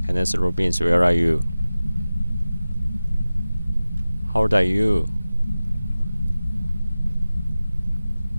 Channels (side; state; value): both; inverted; correlation -0.97